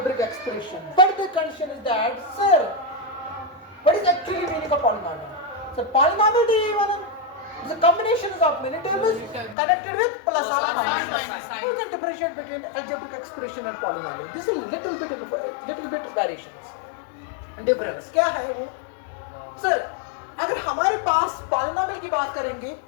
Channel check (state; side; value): drops out; right; at 9.6 s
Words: expression. But the condition is that, sir, what is actually meaning of polynomial? So polynomial is a combination of many terms connected with plus or minus sign. You can differentiate between algebraic expression and polynomial. This is a little bit variations and difference. क्या है वो? Sir, अगर हमारे पास polynomial की बात करेंगे,